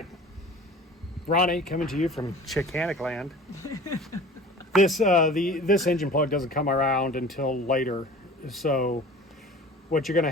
Ronnie, coming to you from Chickanic land. This engine plug doesn't come around until later. So what you're going to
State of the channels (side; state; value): both; normal; correlation 0.42